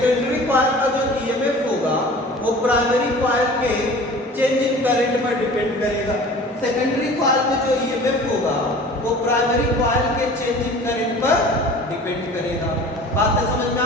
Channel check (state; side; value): normal; both; correlation 0.43